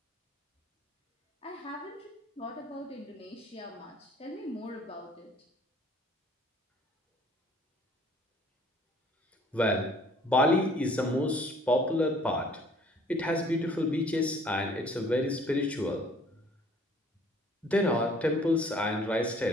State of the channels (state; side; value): normal; both; correlation 0.56